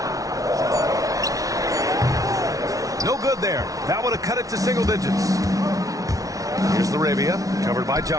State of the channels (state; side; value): late; left; 0.17 ms